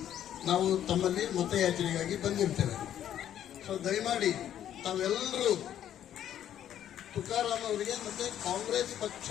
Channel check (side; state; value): right; quieter; 10.7 dB